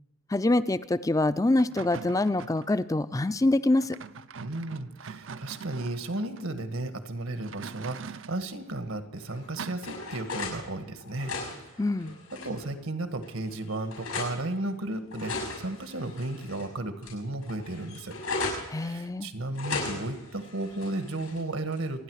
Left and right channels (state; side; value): normal; both; correlation 0.67